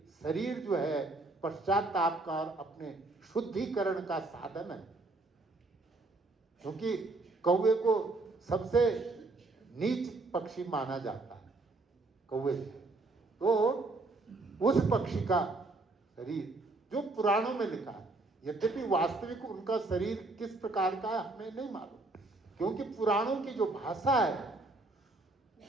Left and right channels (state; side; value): quieter; left; 3.1 dB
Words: शरीर जो है पश्चाताप का और अपने शुद्धिकरण का साधन है। क्योंकि कौवे को सबसे नीच पक्षी माना जाता है कौवे, तो उस पक्षी का शरीर जो पुराणों में लिखा है, यद्यपि वास्तविक उनका शरीर किस प्रकार का है हमें नहीं मालूम, क्योंकि पुराणों की जो भाषा है,